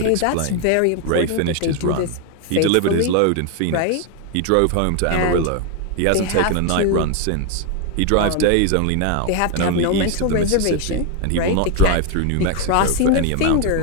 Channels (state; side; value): different; both; correlation 0.01